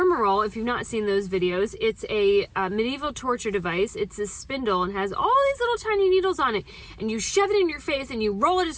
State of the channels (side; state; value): both; identical; correlation 1.00